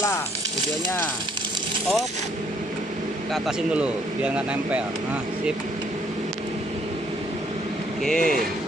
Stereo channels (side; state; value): both; normal; correlation 0.66